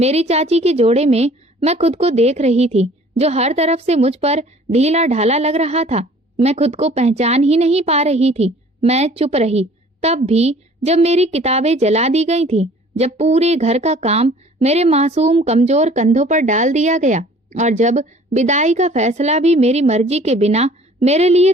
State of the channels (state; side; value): normal; both; correlation 0.51